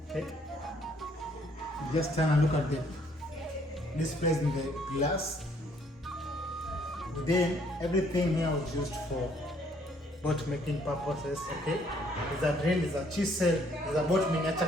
okay. Just turn and look at this place in the glass. Then everything here was used for boat making purposes, okay? There's a drill, there's a chisel, there's a boat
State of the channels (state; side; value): normal; both; correlation 0.65